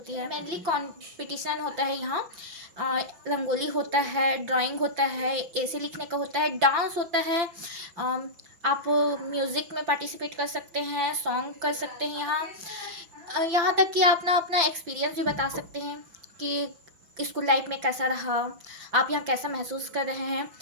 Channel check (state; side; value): late; left; 5.9 ms